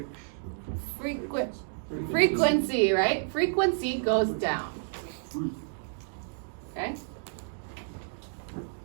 Frequency, right? Frequency goes down. Okay?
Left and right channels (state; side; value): silent; left; digital silence